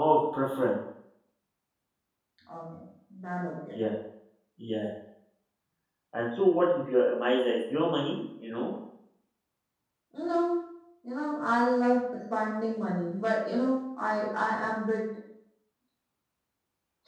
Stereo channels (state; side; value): identical; both; correlation 1.00